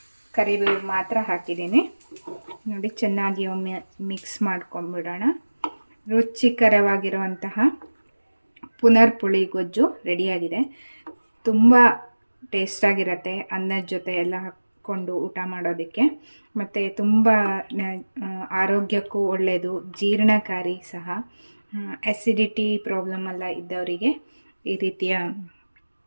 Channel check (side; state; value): both; inverted; correlation -1.00